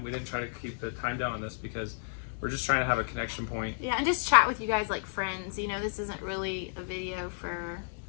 We didn't try to keep the time down on this because we're just trying to have a connection point. Yeah, and just chat with you guys like friends. You know, this isn't really a video for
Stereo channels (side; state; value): right; silent; 57 dB below the other